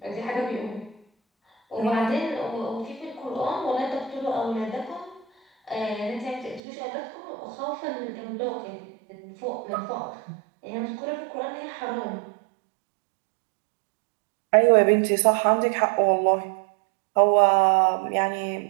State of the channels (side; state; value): left; drops out; at 6.6 s